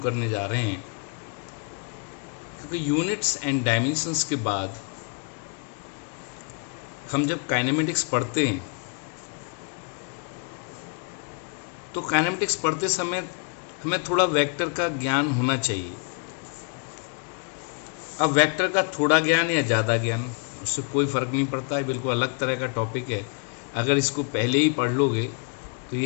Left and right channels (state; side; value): quieter; right; 39.8 dB